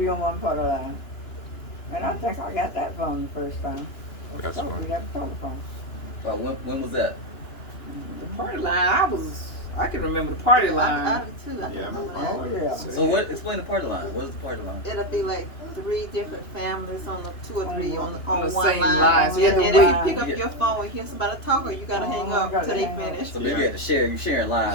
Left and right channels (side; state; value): right; late; 2.9 ms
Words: on one part of line. And I think I got that phone the first time. That's So funny. we got a telephone. When was that? The party line, I can remember the party I line. do too. I Yeah, remember Oh, that. yeah. So what? Explain the party line. What is the party line? It'll be like 3 different families on the 2 or 3 on On the one same line. line. So you had And to if wait. you pick up your phone and hear somebody talking, you gotta hang Oh, up gotta till they hang up. finish. So maybe you had to share. You sharing